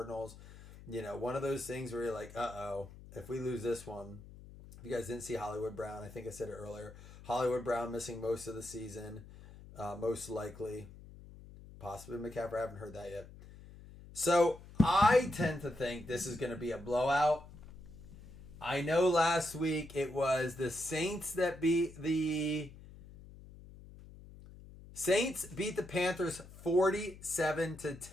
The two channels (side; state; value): left; noise; hum, 18 dB below the sound